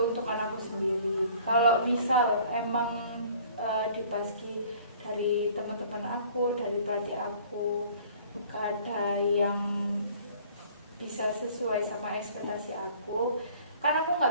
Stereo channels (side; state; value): both; inverted; correlation -0.52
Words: aku sendiri. Kalau misal emang dipaski dari teman-teman aku, dari pelatih aku, gak ada yang bisa sesuai sama ekspektasi aku, kan aku